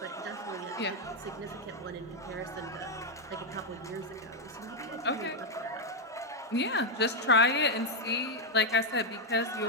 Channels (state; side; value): normal; both; correlation 0.02